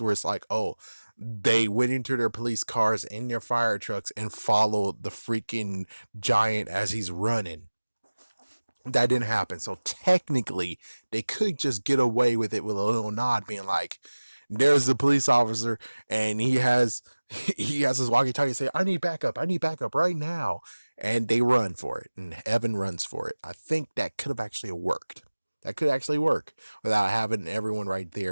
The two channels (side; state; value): both; inverted; correlation -1.00